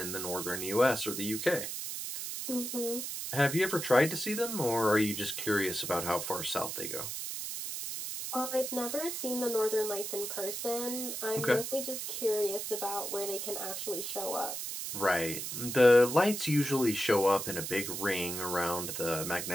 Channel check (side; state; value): right; noise; hiss, 5 dB below the sound